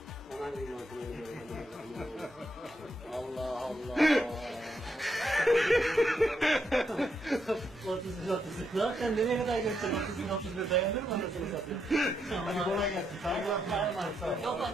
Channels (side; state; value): both; normal; correlation 0.79